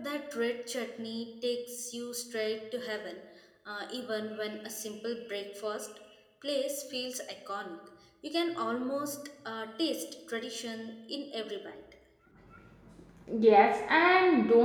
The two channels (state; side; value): identical; both; correlation 1.00